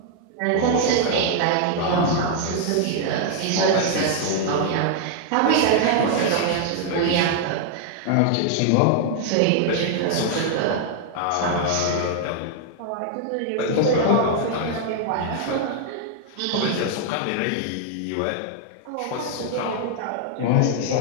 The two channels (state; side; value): different; both; correlation 0.00